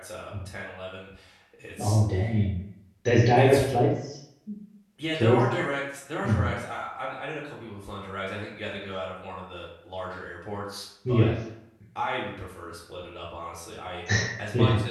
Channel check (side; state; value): both; identical; correlation 1.00